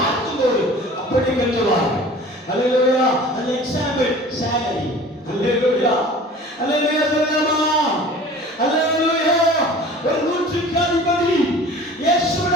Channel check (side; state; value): both; normal; correlation 0.44